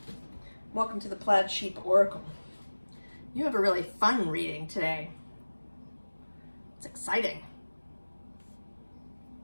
Welcome to the Plaid Sheep Oracle. You have a really fun reading today. It's exciting.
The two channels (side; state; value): both; inverted; correlation -1.00